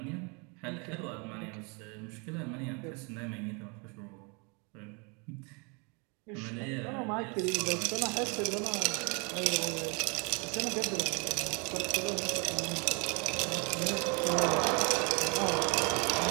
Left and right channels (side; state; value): left; quieter; 32.6 dB